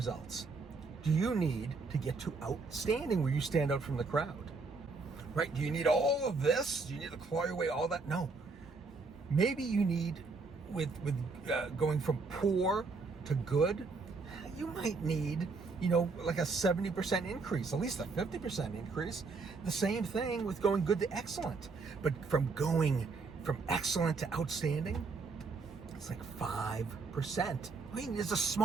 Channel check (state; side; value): quieter; left; 4.2 dB